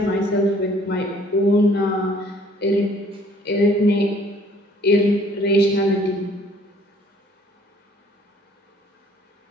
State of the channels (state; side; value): normal; both; correlation 0.58